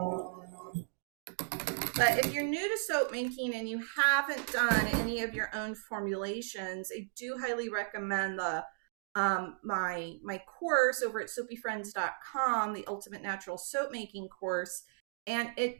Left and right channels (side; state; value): left; silent; digital silence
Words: But if you're new to soap making and you haven't done any of your own formulations, I do highly recommend the my course over at soapyfriends.com, the Ultimate Natural Soap Making course. And